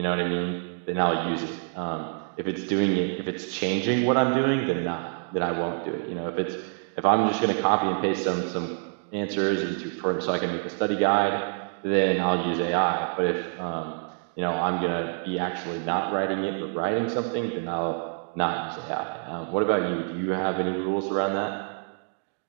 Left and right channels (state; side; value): silent; left; 60 dB below the other